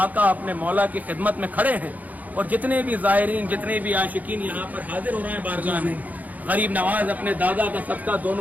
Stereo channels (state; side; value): late; left; 0.079 ms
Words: اپنے مولا کی خدمت میں کھڑے ہیں, اور جتنے بھی زائرین, جتنے بھی عاشقین یہاں پر حاضر ہو رہے ہیں بارگاہ میں, غریب نواز اپنے دادا کا صدقہ